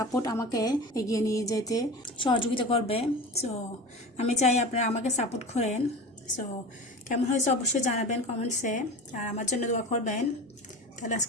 আমাকে এগিয়ে নিয়ে যেতে সহযোগিতা করবে। সো আমি চাই আপনারা আমাকে সাপোর্ট করেন। সো কেমন হয়েছে অবশ্যই জানাবেন কমেন্টসে, আর আমার জন্য দোয়া করবেন। তাহলে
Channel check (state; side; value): normal; both; correlation 0.32